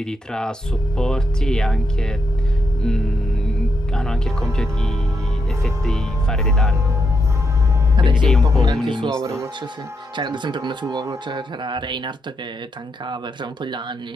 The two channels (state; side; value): normal; both; correlation 0.82